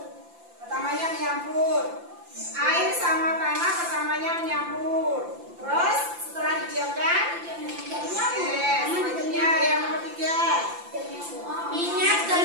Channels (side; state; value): left; late; 5.8 ms